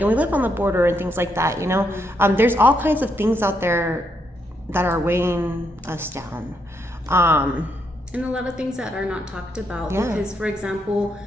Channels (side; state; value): both; normal; correlation 0.78